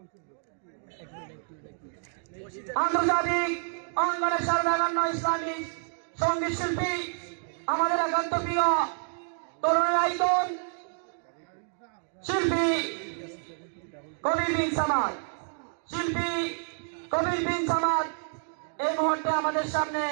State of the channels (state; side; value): silent; left; digital silence